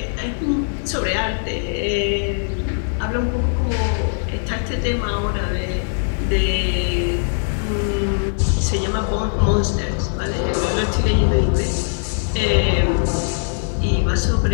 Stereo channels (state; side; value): silent; right; 60 dB below the other